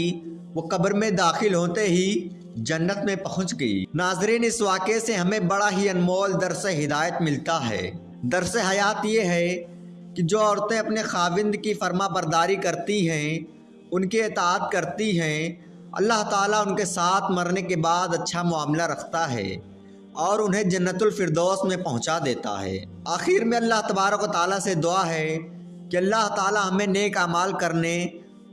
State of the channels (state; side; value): identical; both; correlation 1.00